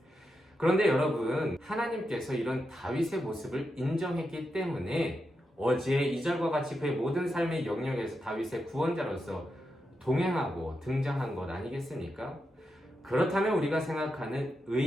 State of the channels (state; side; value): normal; both; correlation 0.86